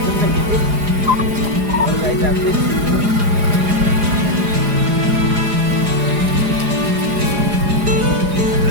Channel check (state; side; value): late; left; 4.9 ms